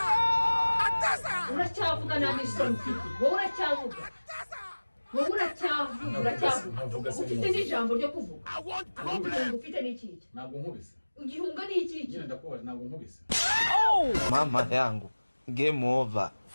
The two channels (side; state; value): both; inverted; correlation -1.00